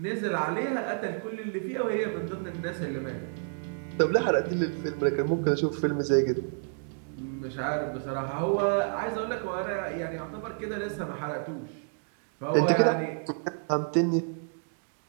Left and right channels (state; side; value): silent; left; digital silence